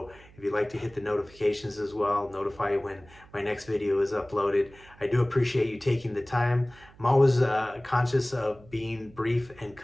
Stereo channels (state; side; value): noise; right; hum, 24 dB below the sound